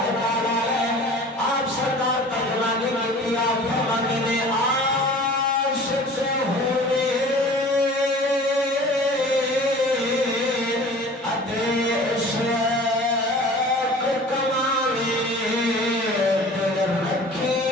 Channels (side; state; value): both; normal; correlation 0.43